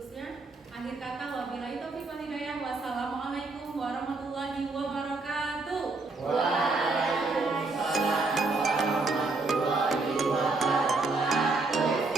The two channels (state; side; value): quieter; left; 3.5 dB